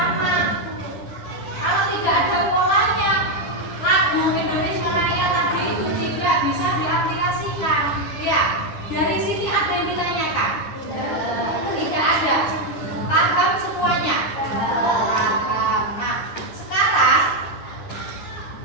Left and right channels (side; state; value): right; late; 10 ms